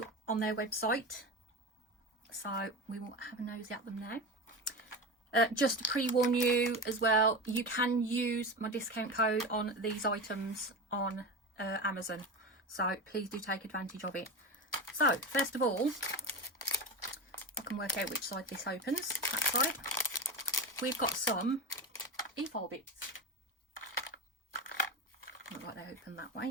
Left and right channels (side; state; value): both; normal; correlation 0.23